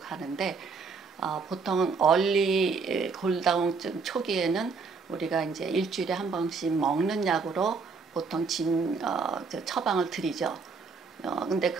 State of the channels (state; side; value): quieter; left; 4.8 dB